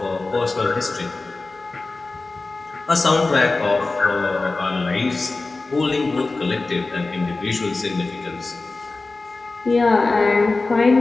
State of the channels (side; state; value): right; quieter; 3.5 dB